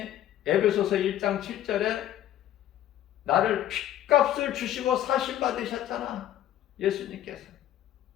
에베소서 1장 7절에 나를 피값을 주시고 사신 받으셨잖아. 예수님께서.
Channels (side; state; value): right; quieter; 12.1 dB